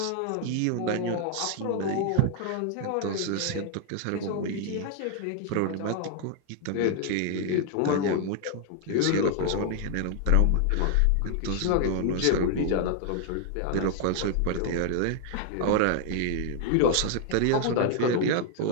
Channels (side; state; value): both; different; correlation 0.00